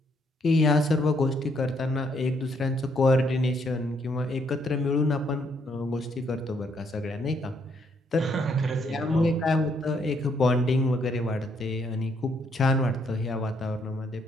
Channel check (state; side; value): normal; both; correlation 0.72